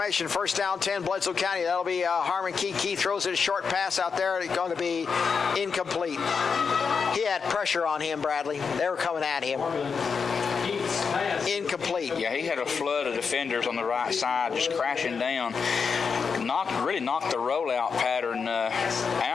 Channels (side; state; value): right; quieter; 5.7 dB